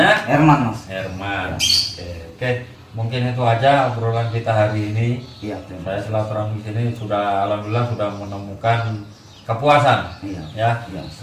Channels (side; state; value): both; identical; correlation 1.00